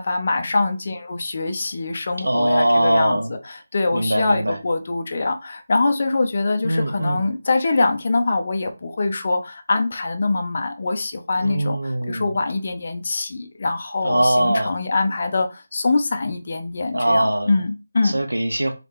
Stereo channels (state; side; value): inverted; both; correlation -0.95